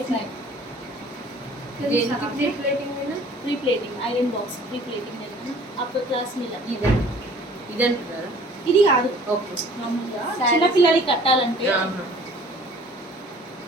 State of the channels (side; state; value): both; normal; correlation 0.51